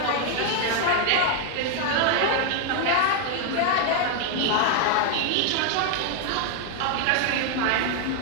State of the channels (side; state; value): both; different; correlation 0.00